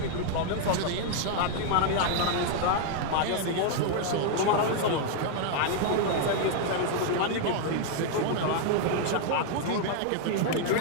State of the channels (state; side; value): different; both; correlation 0.00